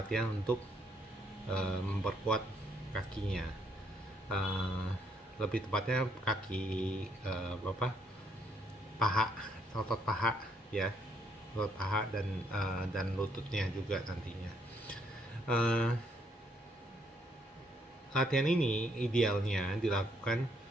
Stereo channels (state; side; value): normal; both; correlation 0.71